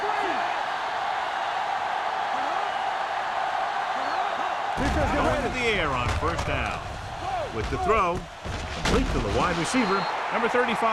Going to the air on 1st down. With the throw, complete to the wide receiver, number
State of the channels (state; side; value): identical; both; correlation 1.00